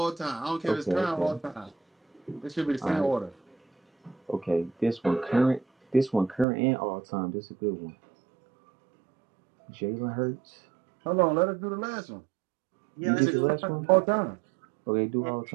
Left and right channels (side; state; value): left; drops out; at 6.5 s